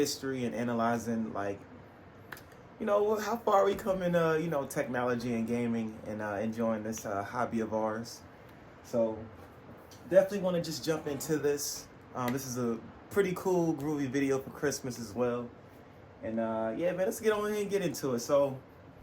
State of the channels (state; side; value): identical; both; correlation 1.00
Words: and analyzing, like, you know, how far we come in, technology and gaming and enjoying this hobby of ours. So definitely want to just jump into this. This is a pretty cool, groovy video for Christmas as well. And yeah, man, let's get on here and get into it. So